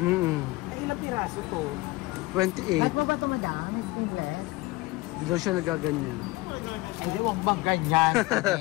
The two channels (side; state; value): right; quieter; 21.0 dB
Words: ilang piraso to? 28. At mo ba ito madami? Skinless? Hindi daw siya nagaganyan. Hindi, huwag bang ganyan,